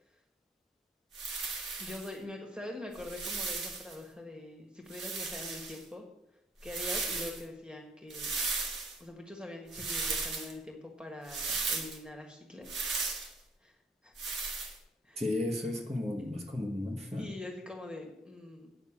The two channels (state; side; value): normal; both; correlation 0.61